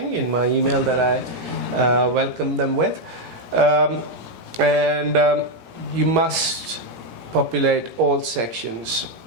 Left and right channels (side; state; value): left; late; 17 ms